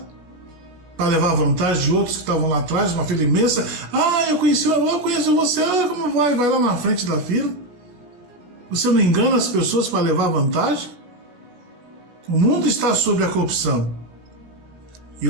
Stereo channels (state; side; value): late; left; 17 ms